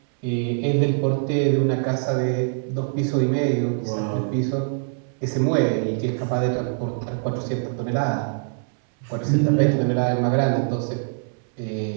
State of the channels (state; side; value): silent; left; 63 dB below the other